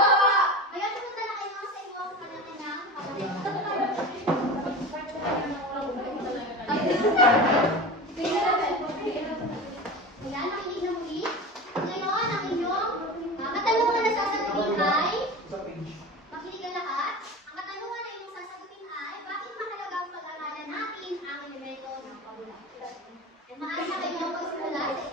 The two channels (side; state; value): both; normal; correlation 0.30